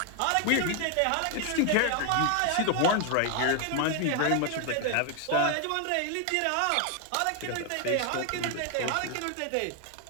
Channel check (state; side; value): different; both; correlation 0.00